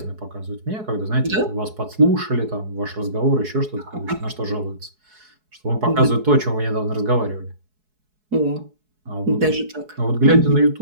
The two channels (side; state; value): left; late; 4.7 ms